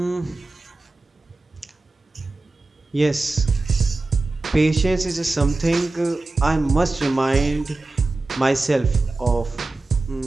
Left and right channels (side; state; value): left; quieter; 3.2 dB